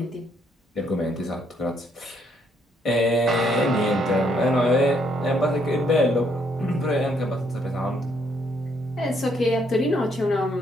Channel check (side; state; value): both; normal; correlation 0.70